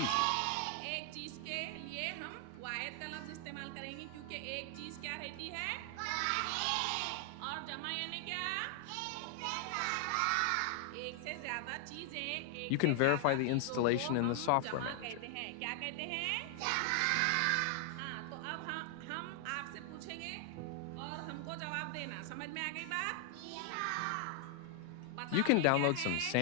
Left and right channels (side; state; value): both; different; correlation 0.00